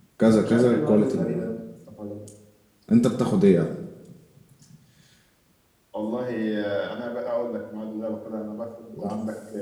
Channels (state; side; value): identical; both; correlation 1.00